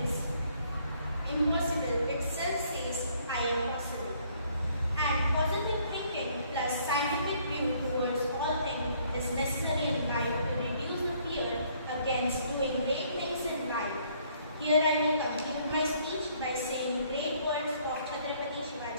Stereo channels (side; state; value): both; inverted; correlation -0.64